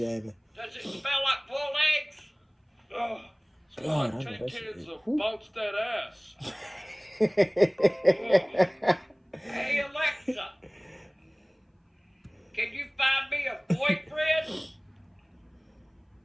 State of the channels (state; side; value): identical; both; correlation 1.00